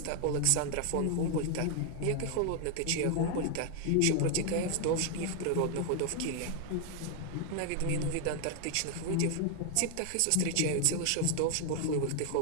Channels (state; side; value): different; both; correlation 0.01